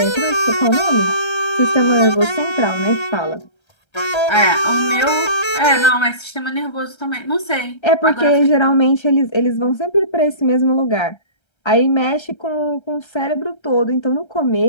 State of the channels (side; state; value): right; late; 1.3 ms